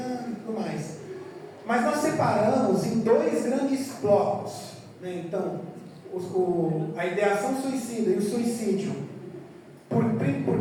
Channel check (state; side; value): identical; both; correlation 1.00